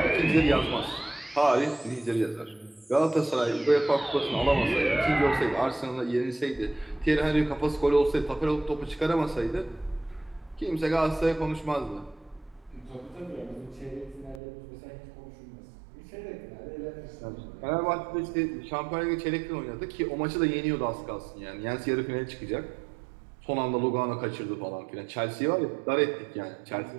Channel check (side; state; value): left; drops out; at 14.4 s